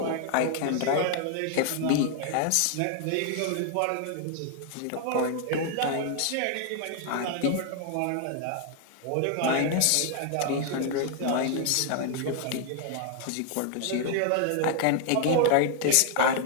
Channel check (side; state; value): both; different; correlation 0.00